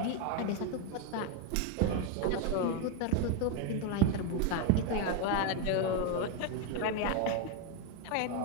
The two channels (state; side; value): different; both; correlation 0.02